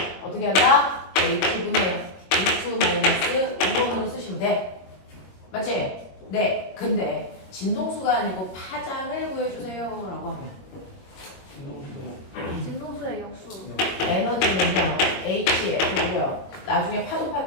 어떻게 한다? H분의 V2 1번으로 쓰시면 돼. 맞지? 네. 근데 진동수가 아니고 파장을 구해주세요 라고 하면 진동수의 역수. 에너지는요 HF고요. 나중에 파동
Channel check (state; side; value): late; right; 21 ms